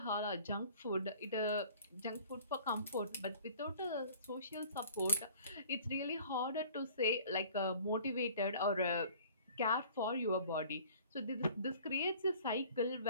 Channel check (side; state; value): both; inverted; correlation -0.50